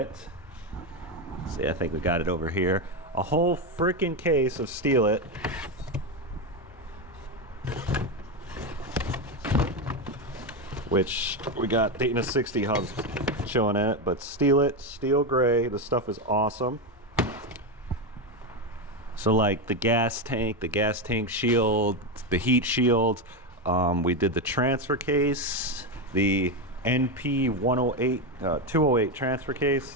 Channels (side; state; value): both; normal; correlation 0.12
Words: See, I think we got it over here. A whole freaking case of Steel It. Which we got Daytona 60 hubs showing in it, but Steel It, steel gray, the stuff is awesome. So like the gas tank shield, the heat shield, we did the transfer case, the NP 108, 208 transfer